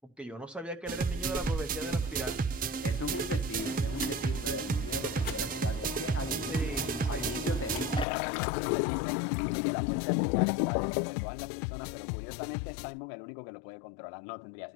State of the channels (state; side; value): drops out; right; at 8.1 s